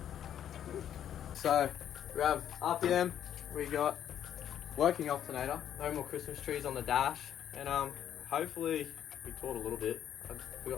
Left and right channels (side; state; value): right; quieter; 10.1 dB